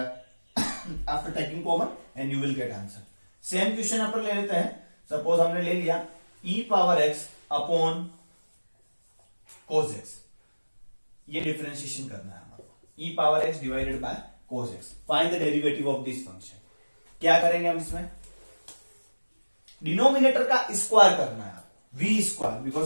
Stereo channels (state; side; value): inverted; both; correlation -1.00